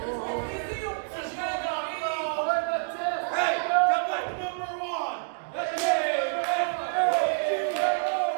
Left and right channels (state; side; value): silent; left; digital silence